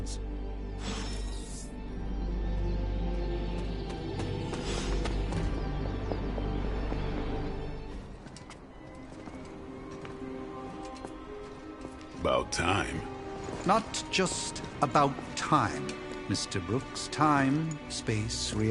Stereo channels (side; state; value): both; identical; correlation 1.00